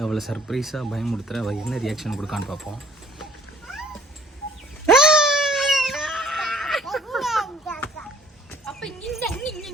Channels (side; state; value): both; normal; correlation 0.58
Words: அவளை சர்ப்ரைஸாக பயமுடுத்துறேன். அவள் என்ன ரியாக்ஷன் கொடுக்கான்னு பார்ப்போம்.